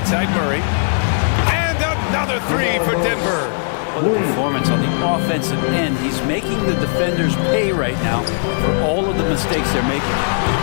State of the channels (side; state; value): right; silent; 64 dB below the other